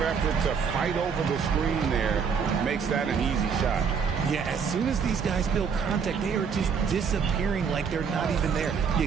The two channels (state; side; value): quieter; left; 6.3 dB